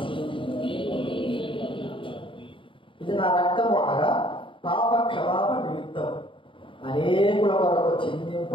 ఇది నా రక్తము అనగా పాప క్షమాపణ నిమిత్తం అనేకుల వరకు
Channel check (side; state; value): right; late; 0.25 ms